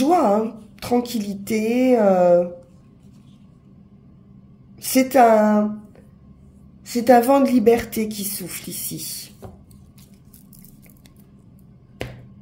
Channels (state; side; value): identical; both; correlation 1.00